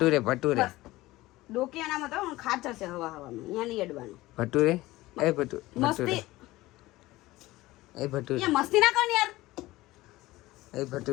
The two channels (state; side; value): quieter; right; 18.4 dB